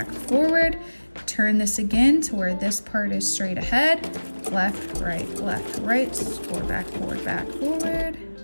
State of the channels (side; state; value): both; inverted; correlation -1.00